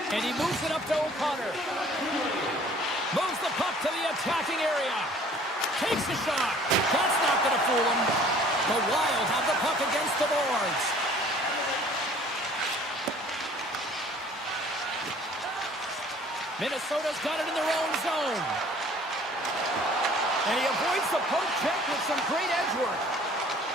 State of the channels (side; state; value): both; normal; correlation 0.53